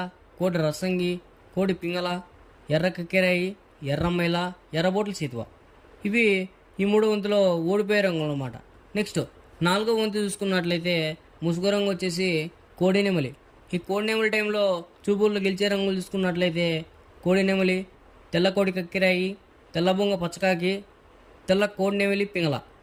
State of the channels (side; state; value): both; identical; correlation 1.00